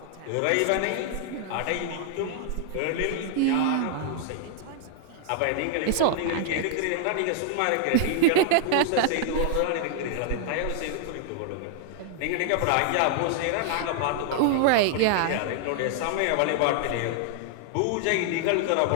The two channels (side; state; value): both; different; correlation -0.01